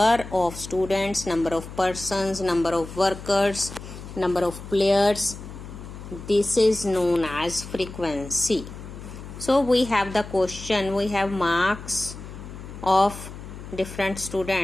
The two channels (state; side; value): noise; left; hum, 13 dB below the sound